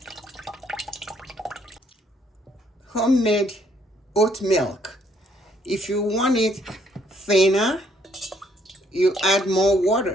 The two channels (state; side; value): normal; both; correlation 0.68